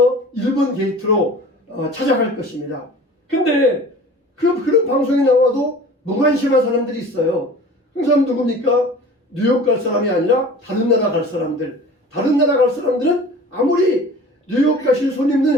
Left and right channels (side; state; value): both; normal; correlation 0.42